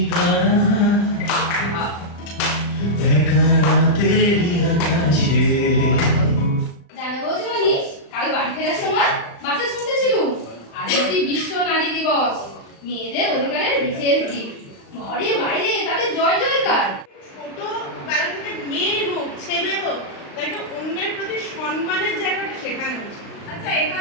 জানো বলছি মনীষ, কাল বাড়ি ফেরার সময় বাসে শুনতেছিলুম আজ নাকি বিশ্ব নারী দিবস, মেয়েদের অধিকারের বিশেষ দিন, ঘরে বাইরে তাদের জয় জয়কার। ছোটবেলা থেকে মেয়ে হোক ছেলে হোক, তাকে অন্যের প্রতি সম্মানের জায়গাটা শেখানো উচিত। আচ্ছা,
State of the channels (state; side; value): late; right; 35 ms